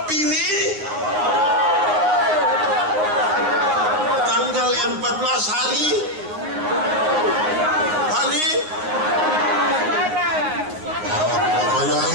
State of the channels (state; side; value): late; left; 9.6 ms